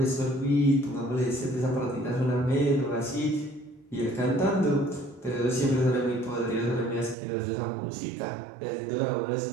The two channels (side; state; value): left; drops out; at 7.2 s